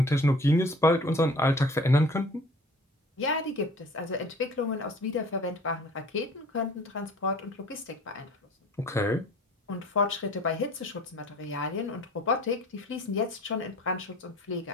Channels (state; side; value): normal; both; correlation 0.47